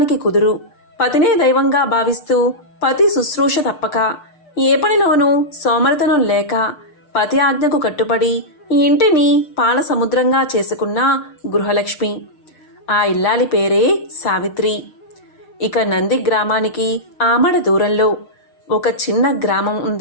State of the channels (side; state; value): right; late; 6.6 ms